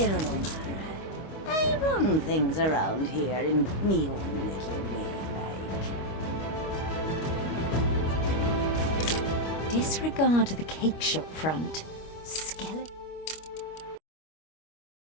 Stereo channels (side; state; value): right; late; 25 ms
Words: no matter. I run things around here in me own little way, like. Disregard the cake shop front.